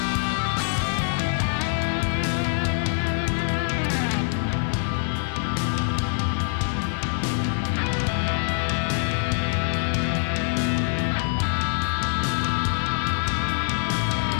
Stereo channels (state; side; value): silent; right; 62 dB below the other